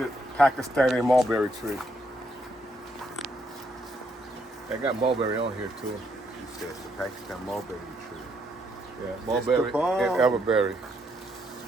Pakistani mulberry tree. They got mulberry on here too. You said it's the Pakistan mulberry tree. Yeah, mulberry and elderberry.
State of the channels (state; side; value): normal; both; correlation 0.74